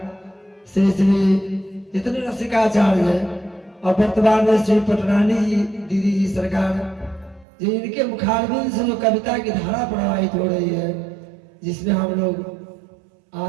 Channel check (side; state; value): left; drops out; at 7.5 s